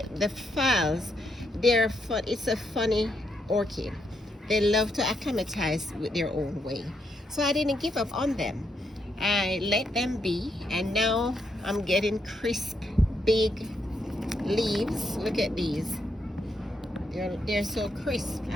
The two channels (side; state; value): both; normal; correlation 0.78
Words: phals. They're fun. It's a funny orchid. They love to acclimatize with their own way. So I didn't give up on them. I let them be, and now I'm getting crisp, big leaves. Look at these. They're so crisp.